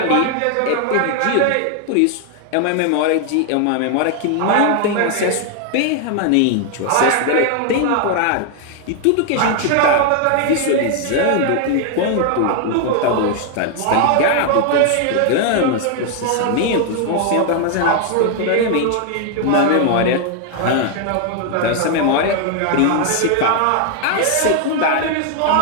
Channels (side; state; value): both; different; correlation 0.00